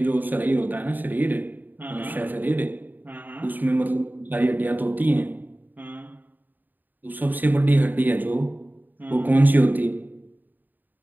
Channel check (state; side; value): late; left; 0.088 ms